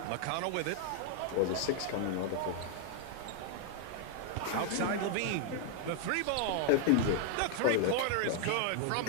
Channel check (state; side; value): different; both; correlation 0.00